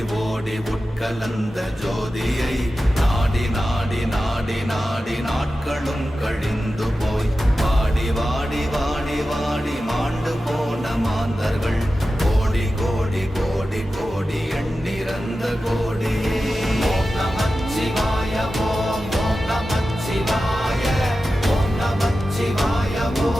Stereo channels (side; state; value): both; normal; correlation 0.93